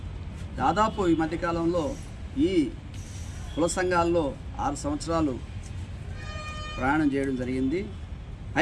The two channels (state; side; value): identical; both; correlation 1.00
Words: దాదాపు ఈ మధ్యకాలంలో ఈ కుల సంఘాల్లో 6 సంవత్సరాలు ప్రయాణం చేయడం జరిగింది.